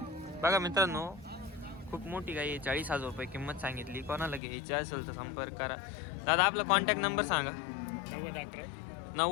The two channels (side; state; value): right; drops out; at 4.4 s